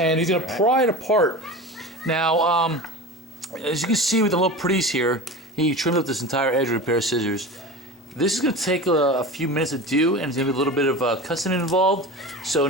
he's going to pry it apart. Now, as you can see with the little pretties here, he trimmed up this entire edge with a pair of scissors. This is going to take a few minutes to do, and there's going to be a little bit of cussing involved. So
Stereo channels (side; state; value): both; normal; correlation 0.30